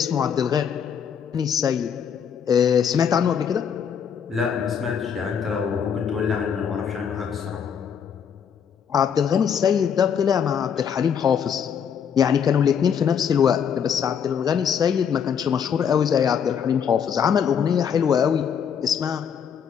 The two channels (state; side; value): quieter; right; 7.7 dB